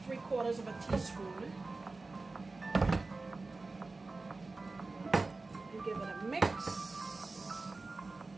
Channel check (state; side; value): quieter; left; 3.6 dB